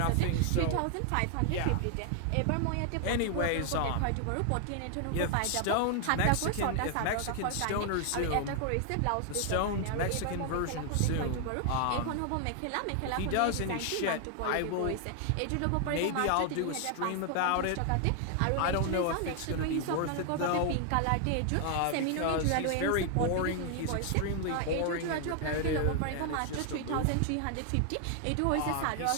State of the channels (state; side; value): different; both; correlation 0.00